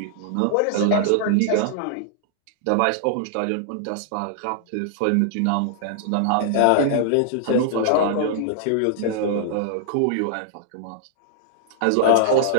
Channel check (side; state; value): both; different; correlation -0.01